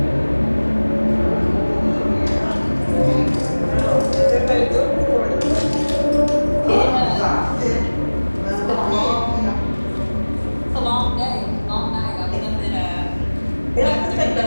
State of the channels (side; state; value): both; inverted; correlation -1.00